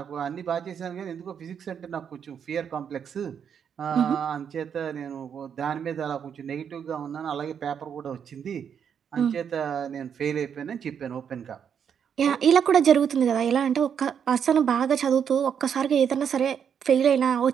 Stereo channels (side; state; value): left; quieter; 7.8 dB